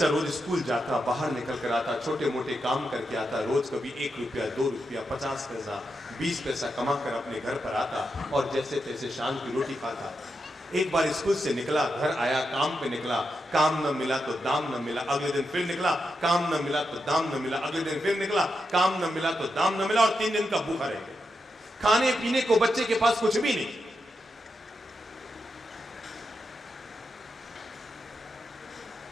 रोज स्कूल जाता, बाहर निकल कर आता, छोटे मोटे काम करके आता, रोज कभी 1 रुपया, 2 रुपया, 50 पैसा, 20 पैसा कमा कर अपने घर पर आता और जैसे तैसे शाम की रोटी खाता। एक बार स्कूल से निकला, घर आया, काम पे निकला, काम न मिला तो दाम न मिला, अगले दिन फिर निकला, काम न मिला तो दाम न मिला, अगले दिन फिर निकला, काम न मिला तो दाम न मिला, और 3 दिन का भूखा रह गया। खाने पीने को बच्चे के पास कुछ भी नहीं।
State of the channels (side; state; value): both; normal; correlation 0.86